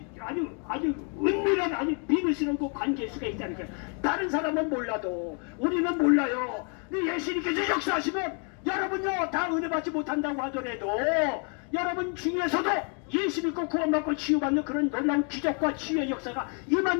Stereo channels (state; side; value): quieter; right; 39.4 dB